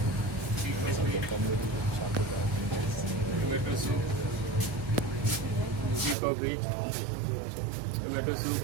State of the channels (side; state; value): left; drops out; at 6.2 s